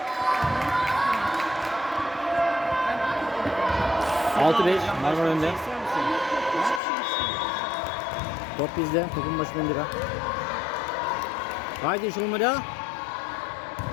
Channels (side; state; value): right; drops out; at 6.8 s